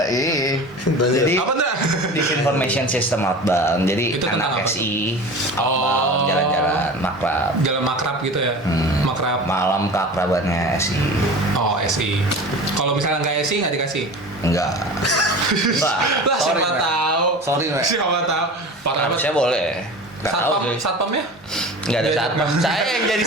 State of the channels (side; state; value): both; normal; correlation 0.35